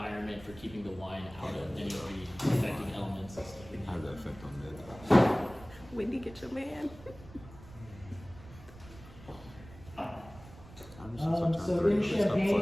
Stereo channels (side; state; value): right; noise; rumble, 19 dB below the sound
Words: for keeping the wine out of any of the affecting elements and stuff like How that. does that affect on meds? Wendy, get your man. So in